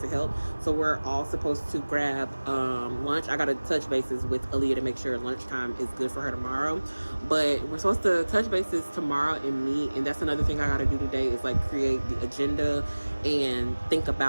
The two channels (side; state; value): both; inverted; correlation -1.00